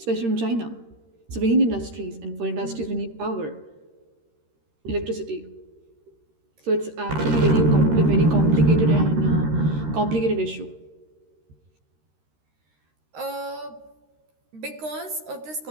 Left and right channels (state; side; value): late; left; 13 ms